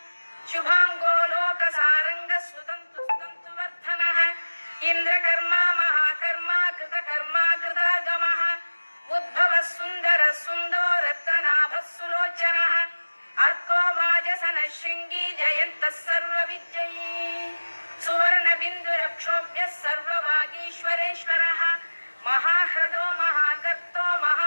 शुभाङ्गो लोकसारङ्गः सुतन्तुवर्धनः इन्द्रकर्मा महाकर्मा कृतकर्मा कृतागमः उद्भवः सुन्दरः सुन्दो रत्ननाभः सुलोचनः अर्को वाजसनः शृङ्गी जयन्तः सर्वविजयी सुवर्णबिन्दुरक्षोभ्यः सर्ववागीश्वरेश्वरः महाह्रदो महागर्तो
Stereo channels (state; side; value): inverted; both; correlation -1.00